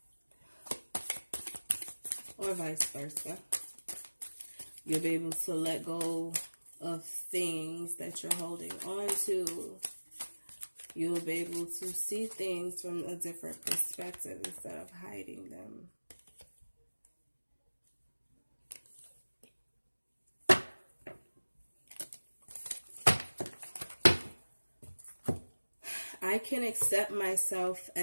or vice versa. You'll be able to let go of things that you're holding on to. You'll be able to see things from a different perspective instead of hiding them. I can accept myself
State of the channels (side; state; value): both; inverted; correlation -1.00